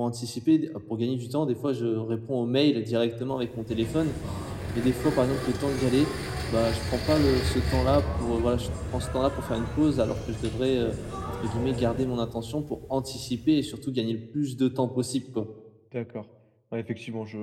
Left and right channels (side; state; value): both; identical; correlation 1.00